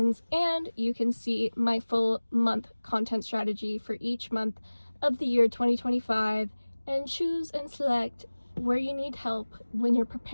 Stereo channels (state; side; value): inverted; both; correlation -1.00